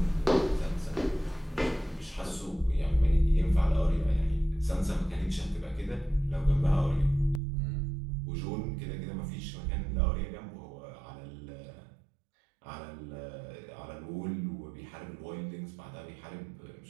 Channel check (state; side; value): drops out; left; at 7.4 s